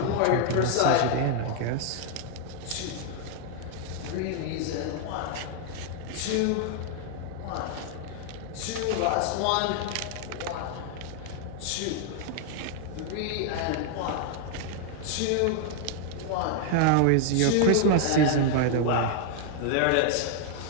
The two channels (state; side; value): different; both; correlation 0.00